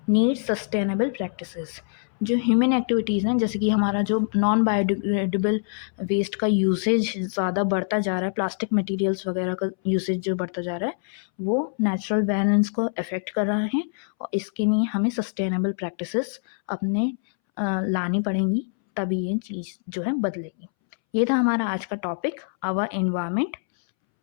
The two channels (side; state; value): right; silent; 62 dB below the other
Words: need sustainable practices. जो ह्यूमन एक्टिविटीज़ हैं, जैसे कि हमारा जो नॉन बायोडिग्रेडेबल वेस्ट का यूसेज ज़्यादा बढ़ता जा रहा है, प्लास्टिक मटेरियल्स वगैरह का यूसेज जो बढ़ता जा रहा है, वो नेचुरल बैलेंस को अफेक्ट कर रहा है, और इसके लिए हमें सस्टेनेबल प्रैक्टिसेस अपने लानी पड़ेंगी, तभी ये चीज़ जो है बदलेगी। ये था हमारा आज का टॉपिक, आवर एनवायरनमेंट।